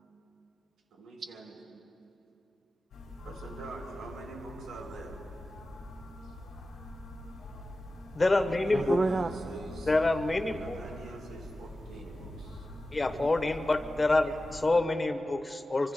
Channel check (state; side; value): normal; both; correlation 0.94